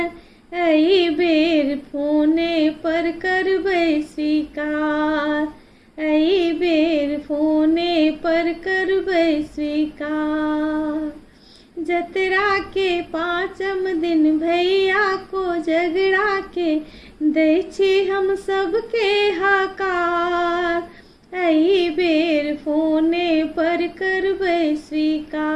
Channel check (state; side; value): identical; both; correlation 1.00